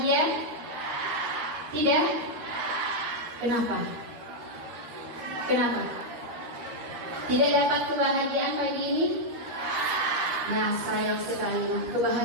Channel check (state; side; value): late; left; 13 ms